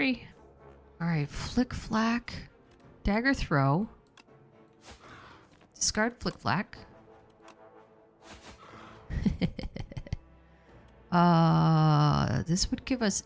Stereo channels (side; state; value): both; identical; correlation 1.00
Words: All right, flick flack, dagger throw, discard flick flack. This would give us